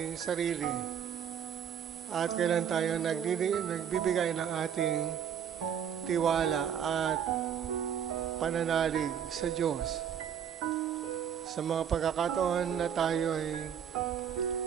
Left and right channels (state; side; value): quieter; left; 8.7 dB